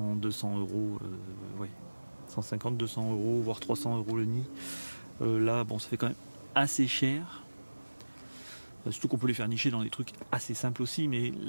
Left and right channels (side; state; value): both; inverted; correlation -1.00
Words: 200 euros, ouais, 150, 200 euros, voire 300 euros le nid. Là bon, ça fait quand même assez cher. Surtout qu'on peut les faire nicher dans des trucs assez simples aussi, mais